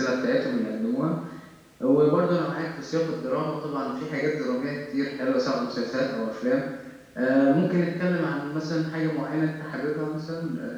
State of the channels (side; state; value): both; identical; correlation 1.00